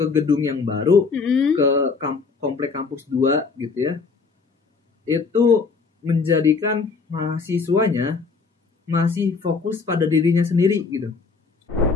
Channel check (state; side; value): quieter; right; 4.7 dB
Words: gedung yang baru, ke komplek kampus 2 gitu ya. Itu menjadikan mahasiswanya masih fokus pada dirinya sendiri gitu.